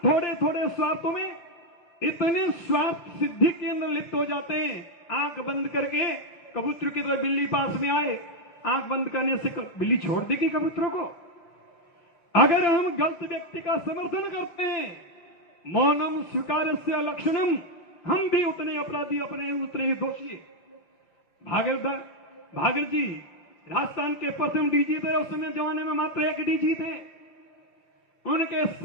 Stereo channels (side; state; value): right; late; 5.8 ms